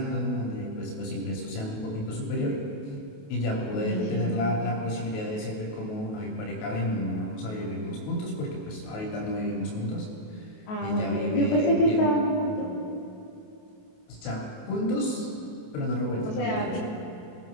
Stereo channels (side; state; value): right; late; 28 ms